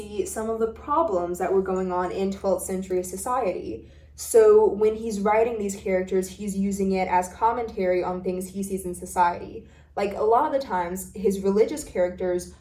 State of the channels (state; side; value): identical; both; correlation 1.00